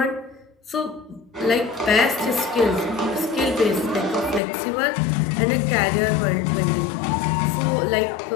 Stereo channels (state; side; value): drops out; right; at 4.4 s